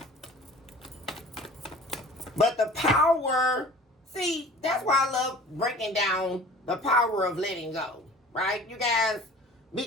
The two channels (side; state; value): both; normal; correlation 0.45